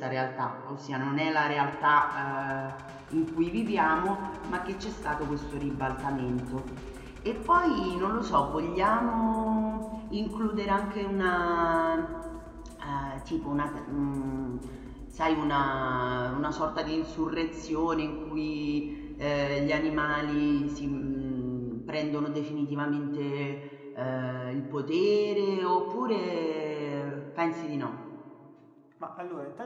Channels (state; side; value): identical; both; correlation 1.00